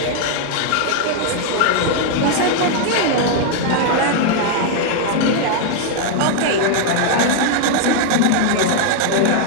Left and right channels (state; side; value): different; both; correlation 0.00